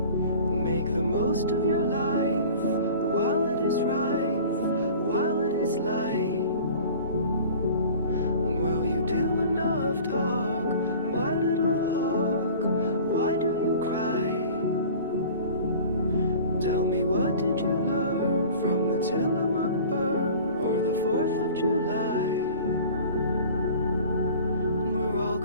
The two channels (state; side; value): inverted; both; correlation -0.43